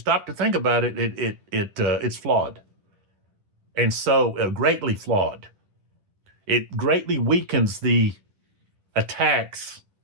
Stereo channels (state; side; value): late; left; 10 ms